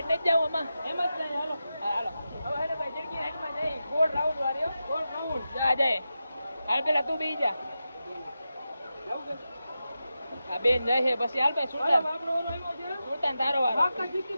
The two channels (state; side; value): inverted; both; correlation -0.91